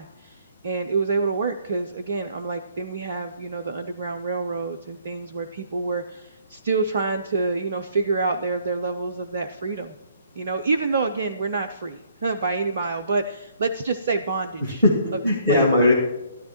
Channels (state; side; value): inverted; both; correlation -0.64